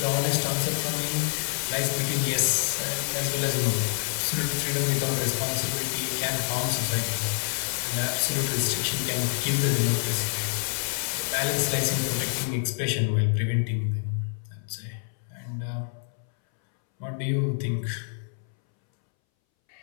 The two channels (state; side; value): silent; right; 60 dB below the other